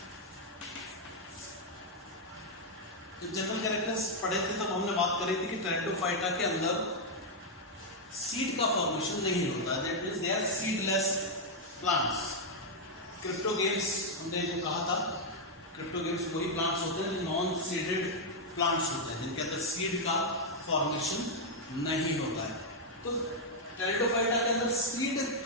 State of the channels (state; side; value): normal; both; correlation -0.01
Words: जब जनरल कैरेक्टर्स पढ़े थे तब हमने बात करी थी कि टेरिडोफाइटा के अंदर सीड का फॉर्मेशन नहीं होता, that means they are seedless plants. Cryptogams हमने जो कहा था, क्रिप्टोगेम्स वही प्लांट्स होते हैं जो नॉन सीडेड प्लांट्स होते हैं, जिनके अंदर सीड का फॉर्मेशन नहीं होता है। तो टेरिडोफाइटा के अंदर सीड